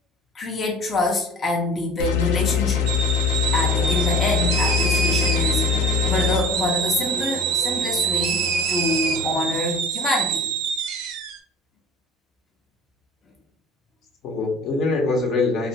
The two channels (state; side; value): normal; both; correlation 0.43